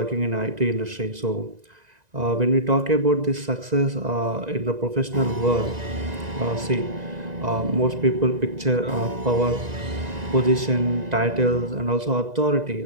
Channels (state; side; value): late; left; 1.9 ms